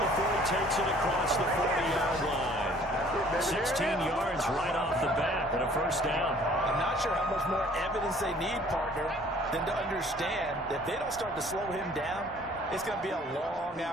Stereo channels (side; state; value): both; normal; correlation 0.55